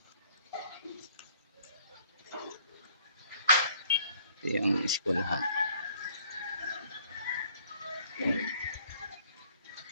Ito yung eskwelahan.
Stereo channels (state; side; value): inverted; both; correlation -0.59